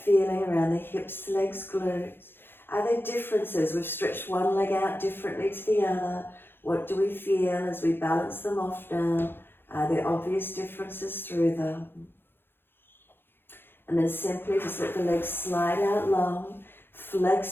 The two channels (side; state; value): right; late; 0.10 ms